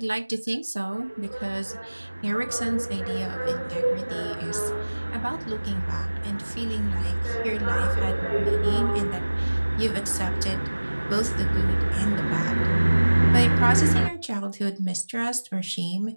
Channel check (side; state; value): both; inverted; correlation -1.00